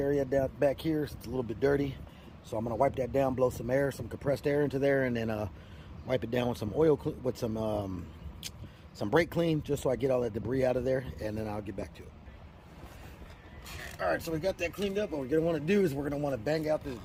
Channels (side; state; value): both; identical; correlation 1.00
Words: down back here. It's a little bit dirty. So I'm going to wipe that down, blow some air, some compressed air into there, and then wipe it down with some oil, with some brake clean, just so I get all that debris out of there, and then I'll get back to it. All right, so we got that cleaned up. What we're gonna want to do is we're gonna want to bang out this